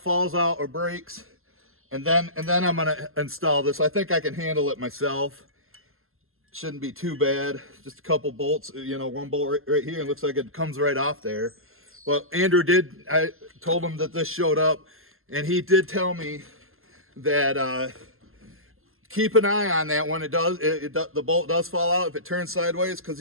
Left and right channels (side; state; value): left; late; 0.61 ms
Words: falls out, or breaks, and then I'm gonna install this. I think I can handle it myself. Shouldn't be too bad. Just a couple bolts, you know, one bolt right here, and looks like it comes right off there. Well, Andrew did. I told him that this showed up, and he did tell me that keep an eye on that when it does. The bolt does fall out if it turns sideways, because